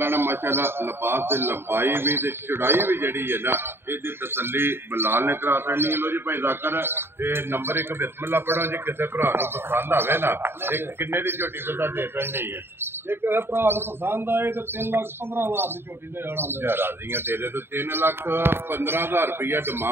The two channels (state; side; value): late; left; 0.11 ms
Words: माशाल्लाह लिबास ते लंबाई भी ते चौड़ाई भी जेड़ी है ना इसकी तसल्ली बलाल ने करा सकनी है। लो जी भाई जाकर ये नंबर एक बिस्मिल्लाह पढ़ो जी। किसी भरा पसंद आवे ना एक किन्ने की झोटी तो दे सकनी है एक भरा पसंद आए तो 3,15,000 की झोटी दे जाना राजी है तेरे तो 3,15,000 रुपया